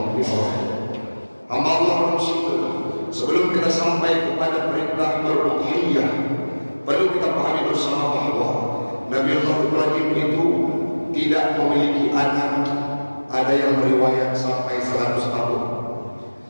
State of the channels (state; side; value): inverted; both; correlation -1.00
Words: Ibrahim. Hamba Allah manusia, sebelum kita sampai kepada perintah beruhiyah, perlu kita pahami bersama bahwa Nabiullah Ibrahim itu tidak memiliki anak. Ada yang meriwayat sampai 100 tahun.